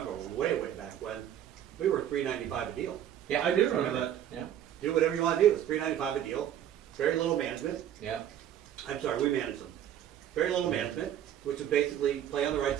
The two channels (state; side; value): quieter; left; 10.6 dB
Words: way back when, we were $3.95 a deal. Yeah, I do remember that. Yeah, Do whatever you want to do. It's $3.95 a deal. Very little management. yeah. I'm sorry, we manage them. Very little management, which is basically play on the right